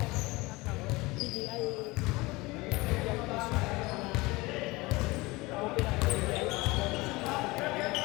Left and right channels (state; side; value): quieter; right; 22.4 dB